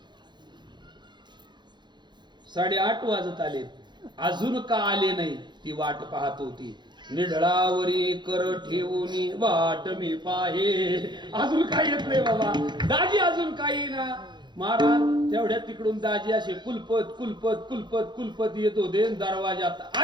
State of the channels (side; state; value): left; late; 0.21 ms